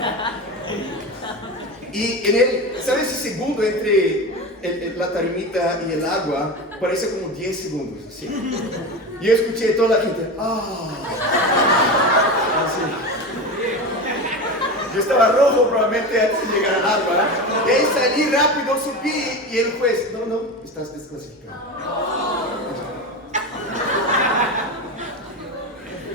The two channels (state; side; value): normal; both; correlation 0.24